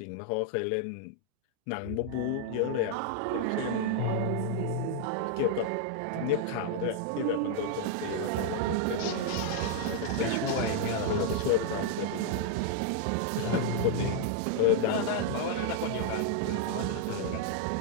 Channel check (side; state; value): both; different; correlation 0.00